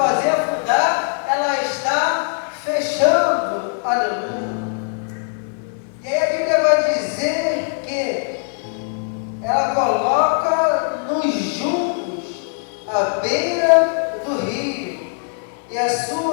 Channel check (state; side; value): silent; right; 60 dB below the other